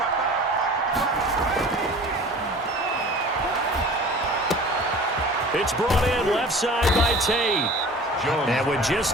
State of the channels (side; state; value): both; normal; correlation 0.42